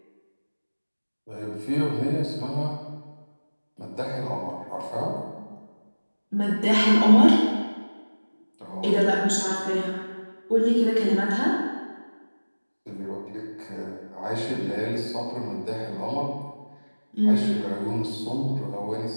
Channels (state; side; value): inverted; both; correlation -1.00